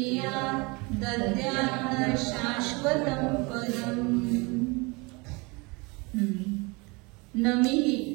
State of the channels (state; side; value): quieter; left; 27.2 dB